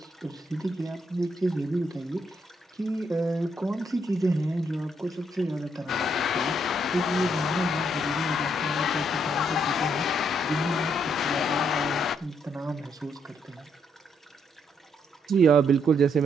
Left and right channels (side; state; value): both; normal; correlation 0.74